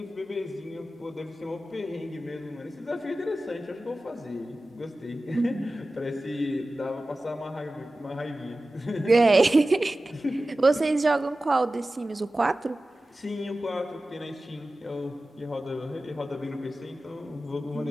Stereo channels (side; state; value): both; normal; correlation 0.95